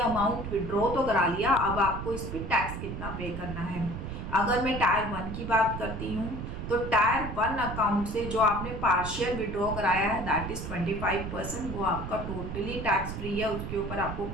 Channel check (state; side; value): noise; right; rumble, 6 dB below the sound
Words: अमाउंट विड्रॉ तो करा लिया, अब आपको इस पर टैक्स कितना पे करना है। अगर मैं टायर 1 की बात करती हूँ तो टायर 1 अकाउंट से जो आपने पार्शियल विड्रॉ कराया है दैट इज 25%, वो आपका टोटली टैक्स फ्री है, उसके ऊपर आपको